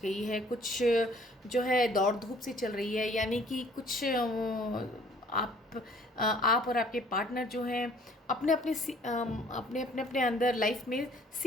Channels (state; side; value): normal; both; correlation 0.56